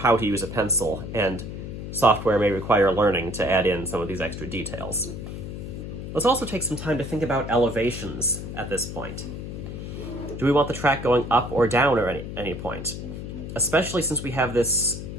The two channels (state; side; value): noise; left; hum, 8 dB below the sound